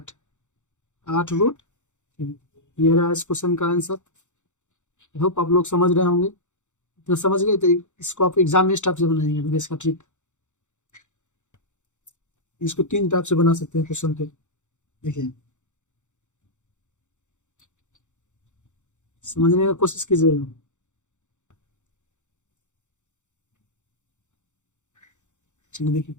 8√3। ये रहा इस क्वेश्चन का आंसर। होप आप लोग समझ रहे होंगे, तो समझ गए तो इसको आप एग्जाम में इस टाइप से बनाएंगे, इसका ट्रिक। इसको 3 टाइप से बना सकते हैं क्वेश्चन को। देखिए समझने का कोशिश कीजिएगा। चलिए देखिए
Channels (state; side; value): late; right; 0.85 ms